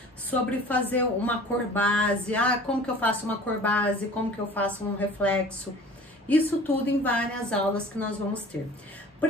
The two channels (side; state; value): both; normal; correlation 0.45